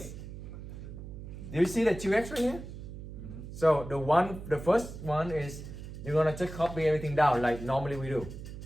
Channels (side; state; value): right; noise; hum, 11 dB below the sound